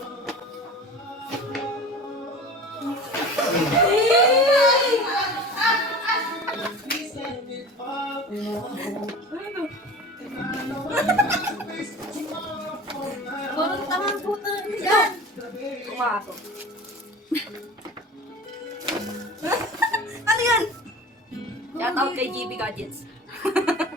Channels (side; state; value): both; normal; correlation 0.37